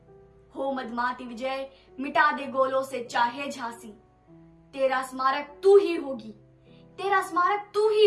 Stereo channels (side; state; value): both; identical; correlation 1.00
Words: हो मदमाती विजय, मिटा दे गोलों से चाहे झांसी। तेरा स्मारक तू ही होगी, तेरा स्मारक तू ही